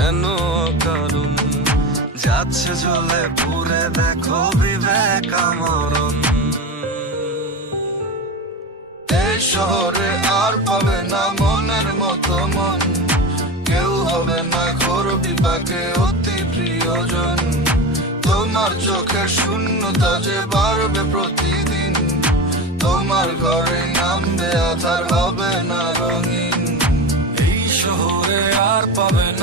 কারণ, যাচ্ছে জ্বলে পুরে দেখো বিবেক আমরণ। এই শহরে আর পাবে না মনের মতো মন, কেউ হবে না ঘোর বিপাকে অতি প্রিয়জন। তোমার চোখের শূন্যতা যে বাড়বে প্রতিদিন, তোমার ঘরে নামবে আধার, হবে না রঙিন। এই শহরে আর পাবে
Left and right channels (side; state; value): both; normal; correlation 0.24